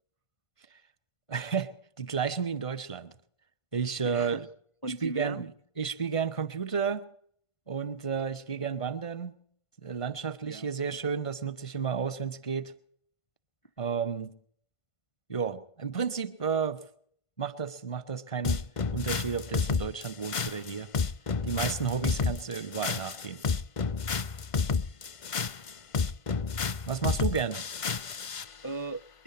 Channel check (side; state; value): right; late; 1.5 ms